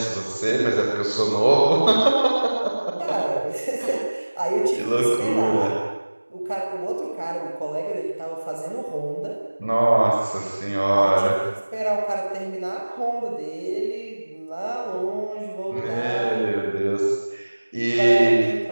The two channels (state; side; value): inverted; both; correlation -1.00